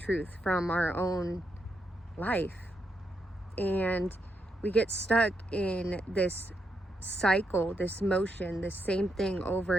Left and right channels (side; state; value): both; normal; correlation 0.81